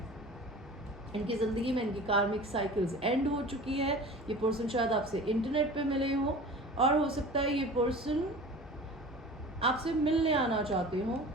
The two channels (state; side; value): normal; both; correlation 0.39